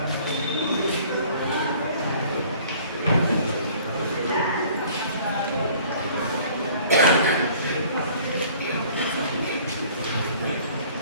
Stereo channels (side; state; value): both; inverted; correlation -0.53